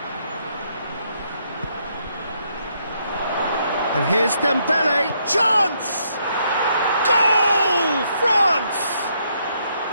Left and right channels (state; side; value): inverted; both; correlation -0.73